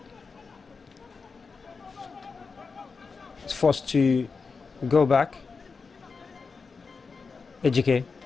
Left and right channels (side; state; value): right; quieter; 4.8 dB